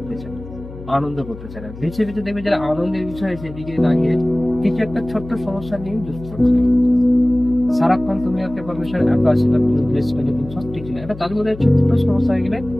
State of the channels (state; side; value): noise; left; hum, 14 dB below the sound